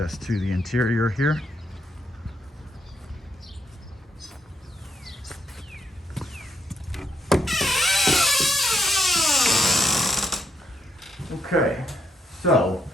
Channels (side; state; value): both; normal; correlation 0.76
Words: to the interior here. Okay, so